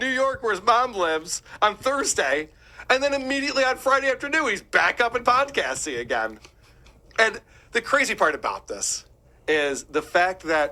York, where his mom lives, on Thursday, and then immediately on Friday afternoon, he's back up in podcasting again. And the crazy part about this is the fact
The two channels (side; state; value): both; identical; correlation 1.00